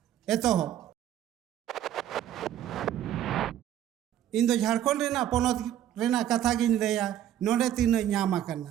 एतो इन दो झारखंड रेना पोनोत रेना कथा गिन लेया नोडे तीन ᱧᱟᱢ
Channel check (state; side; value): quieter; left; 11.2 dB